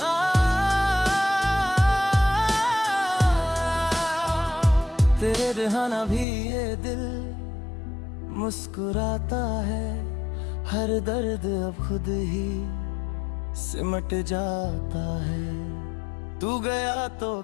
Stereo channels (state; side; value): drops out; right; at 6.2 s